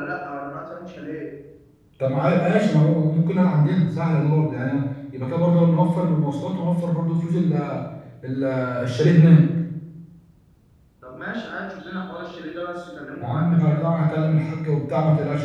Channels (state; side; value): identical; both; correlation 1.00